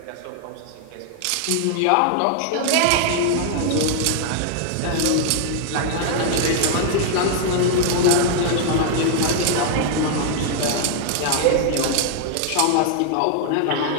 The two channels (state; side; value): different; both; correlation -0.01